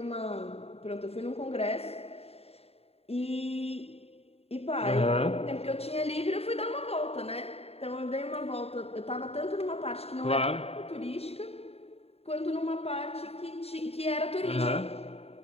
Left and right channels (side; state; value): right; late; 0.29 ms